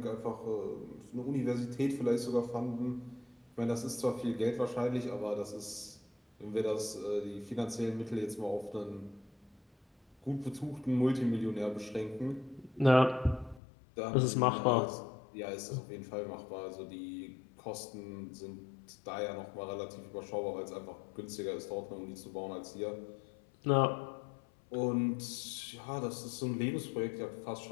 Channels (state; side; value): drops out; right; at 13.6 s